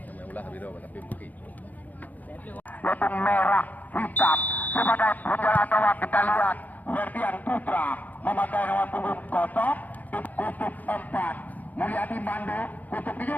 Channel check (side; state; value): right; late; 0.080 ms